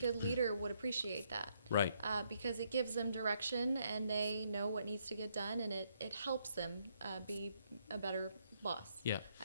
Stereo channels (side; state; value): both; inverted; correlation -0.73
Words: leader would appreciate that. Right. Because it gives them direction and they know what needs to get done, and it helps them be a better boss. Yeah.